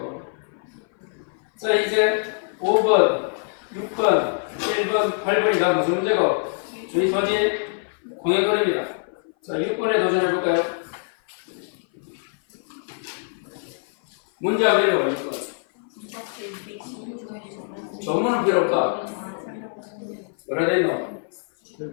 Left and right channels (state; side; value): silent; right; 57 dB below the other